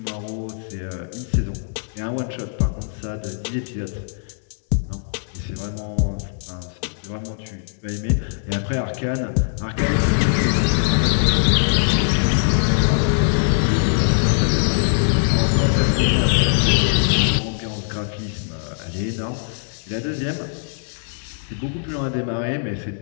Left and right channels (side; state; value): right; silent; digital silence